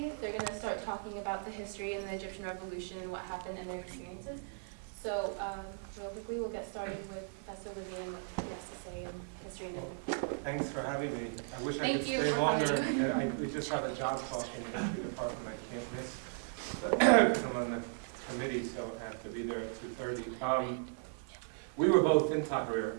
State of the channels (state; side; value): silent; left; 54 dB below the other